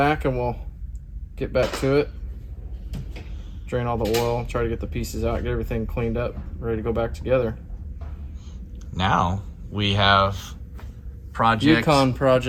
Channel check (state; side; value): identical; both; correlation 1.00